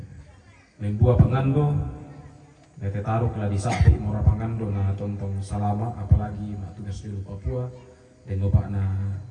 Membuat pengando, bete taruh lah di sapi mora pengando na tontong salama apalagi mak tugas di Papua dan bapak na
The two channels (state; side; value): identical; both; correlation 1.00